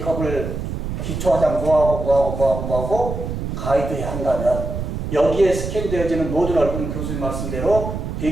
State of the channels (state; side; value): noise; right; rumble, 5 dB below the sound